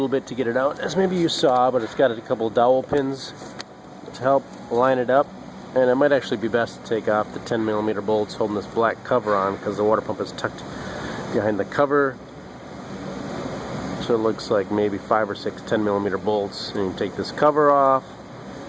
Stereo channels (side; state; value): both; identical; correlation 1.00